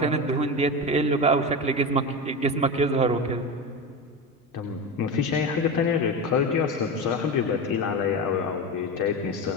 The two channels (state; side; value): normal; both; correlation 0.21